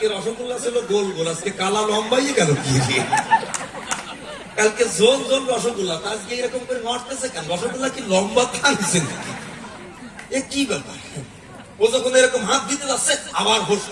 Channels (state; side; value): identical; both; correlation 1.00